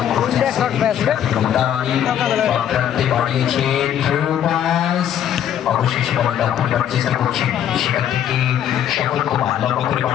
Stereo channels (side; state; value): right; quieter; 10.1 dB